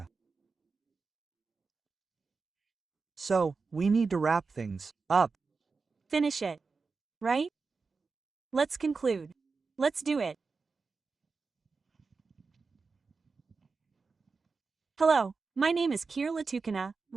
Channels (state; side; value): quieter; left; 4.5 dB